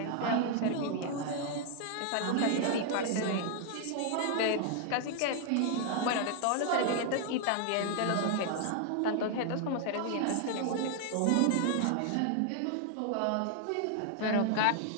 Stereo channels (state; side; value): different; both; correlation 0.00